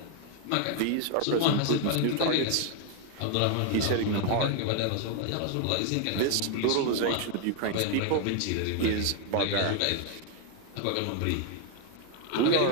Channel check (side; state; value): both; different; correlation 0.01